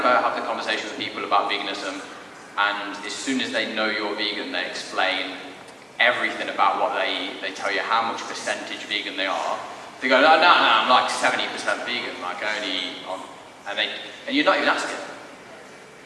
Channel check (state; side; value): identical; both; correlation 1.00